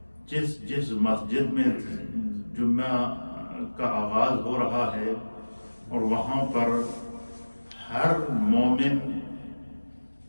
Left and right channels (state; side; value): inverted; both; correlation -1.00